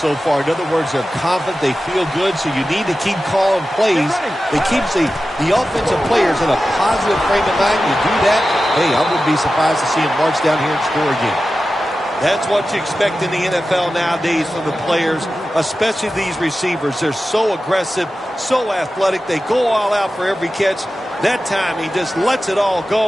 far. In other words, they're confident, they feel good, so you need to keep calling plays. It keeps the offensive players in a positive frame of mind. You do that, hey, I wouldn't be surprised to see them march down here and score again. That's what you expect in the NFL nowadays from the players, especially these receivers. They're so aggressive, so athletic. They go all out for every catch. That time, he just lets it all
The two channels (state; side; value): normal; both; correlation 0.94